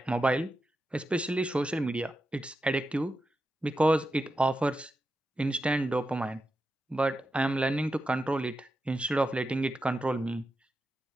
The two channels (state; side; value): normal; both; correlation 0.89